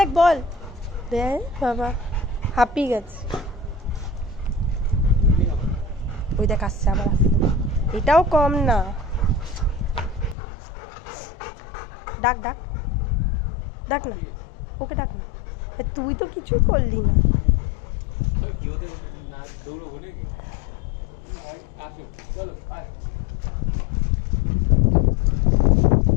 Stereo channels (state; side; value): drops out; right; at 10.4 s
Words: বল। দেখ বাবা হাঁপিয়ে গেছে। ওই দেখ আসছে আবার আসছে, এটাও কম না। ডাক ডাক ডাক না, ওকে ডাক না। তুই তো কিছু করলি না।